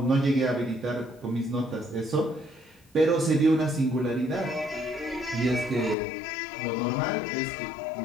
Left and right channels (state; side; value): drops out; right; at 6.0 s